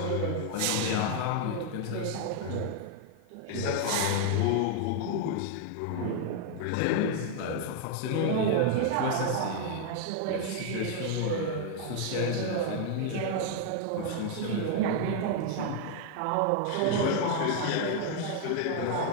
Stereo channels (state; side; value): different; both; correlation 0.00